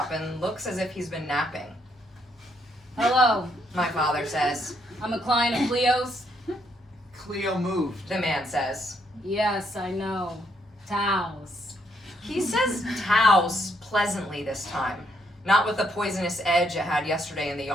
and looks as if he's been napping. Hello, My father says. I'm a client of Cleo's. Cleo moved. The man says. Yes, I know. Taos. He says Taos pleasantly this time, not with the poisonous edge it had yesterday in the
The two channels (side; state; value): both; normal; correlation 0.73